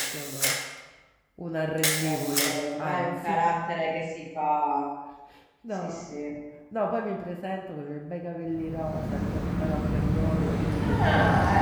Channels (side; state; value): both; identical; correlation 1.00